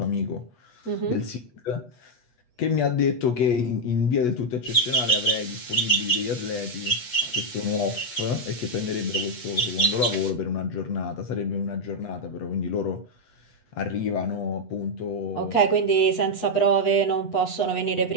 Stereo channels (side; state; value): right; late; 8.2 ms